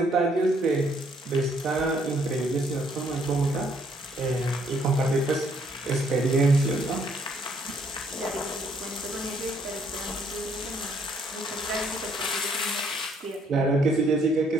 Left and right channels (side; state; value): both; normal; correlation 0.67